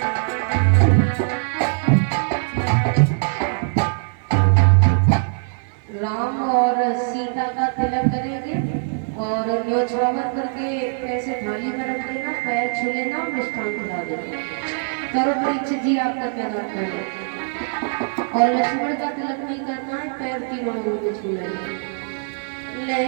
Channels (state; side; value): silent; left; 59 dB below the other